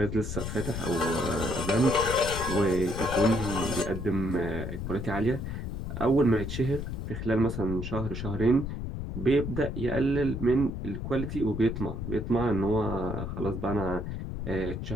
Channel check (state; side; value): noise; left; rumble, 5 dB below the sound